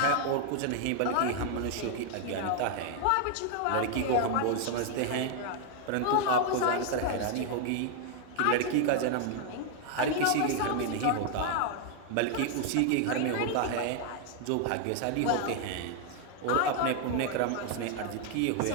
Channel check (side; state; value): both; different; correlation 0.00